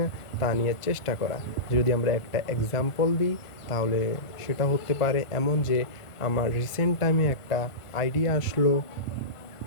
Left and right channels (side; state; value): right; late; 1.4 ms